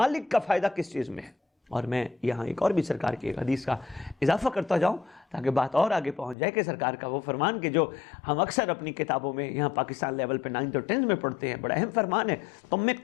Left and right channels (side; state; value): right; drops out; at 6.4 s